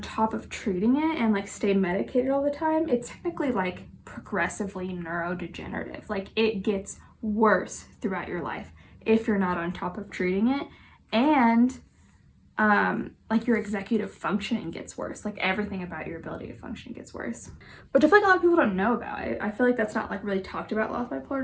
top of treating it and, like, stay medicated all the time, it's technically, like, progressively neurodegenerative. Like, it gets worse throughout your life if you're not on top of treating it. And like your executive functioning gets worse. Like everything about your ability to function gets worse. Which I feel like a lot of people don't know about. I feel like that's not like really talked about a lot with bipolar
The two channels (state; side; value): identical; both; correlation 1.00